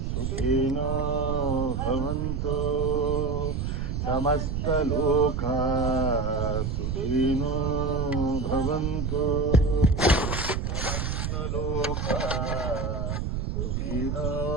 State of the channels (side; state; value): right; noise; rumble, 1 dB below the sound